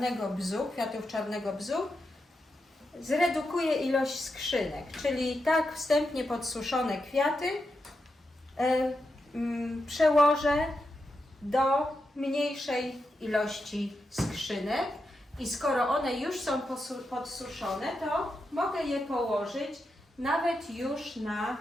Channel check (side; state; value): both; normal; correlation 0.87